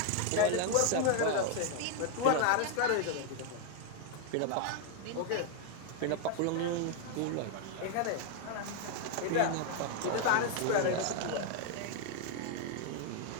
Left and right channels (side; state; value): both; different; correlation 0.00